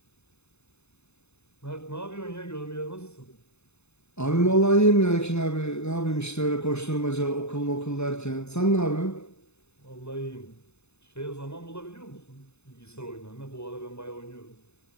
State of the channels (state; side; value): late; right; 0.81 ms